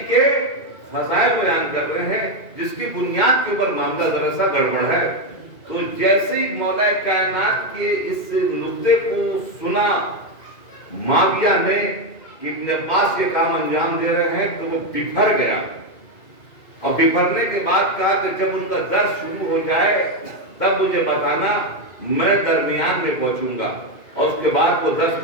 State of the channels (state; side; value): late; right; 2.5 ms